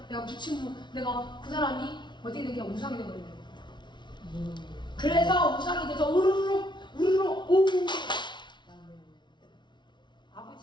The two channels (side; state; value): right; late; 0.22 ms